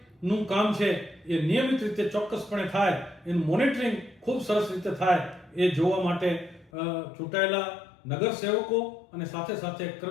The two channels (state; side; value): drops out; right; at 6.7 s